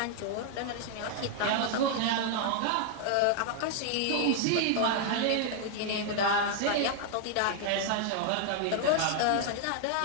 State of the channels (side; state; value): both; different; correlation 0.00